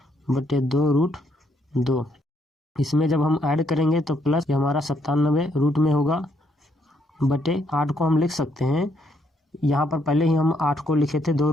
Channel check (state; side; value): normal; both; correlation 0.73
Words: इसमें जब हम ऐड करेंगे तो प्लस हमारा 97 रूट में होगा बटे 8 को हम लिख सकते हैं। यहाँ पर पहले ही हम 8 को लिखे थे